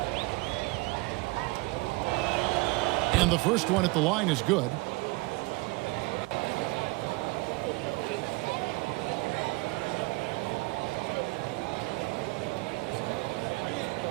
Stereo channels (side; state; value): left; quieter; 24.8 dB